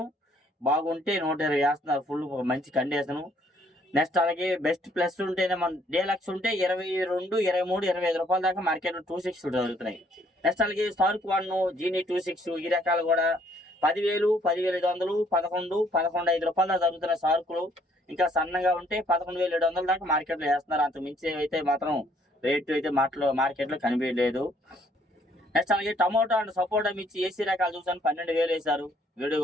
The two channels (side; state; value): both; normal; correlation 0.65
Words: బాగుంటే 120 వేస్తున్నారు. ఫుల్ మంచి కండిషను. నెక్స్ట్ అలాగే బెస్ట్ ప్లస్ ఉంటేనే మన డీలక్స్ ఉంటే 22, 23, 25 రూపాయల దాకా మార్కెట్లో 26 జరుగుతున్నాయి. నెక్స్ట్ అలాగే స్టార్క్ 1, జీనీ 26 ఈ రకాలు కూడా 10,000, 10,500, 11, 11,500 రూపాయల దాకా జరుగుతున్నాయి సార్కులు. ఇంకా సన్నగా ఉంటే 11,700 దాకా మార్కెట్లో వేస్తున్నారు. అంత మించి అయితే మాత్రం రేటు అయితే మార్కెట్లో కనిపించలేదు. నెక్స్ట్ అలాగే టమోటా అండ్ సపోటా మిర్చి ఏసీ రకాలు చూసాను 12,000 వేశారు. వీడియో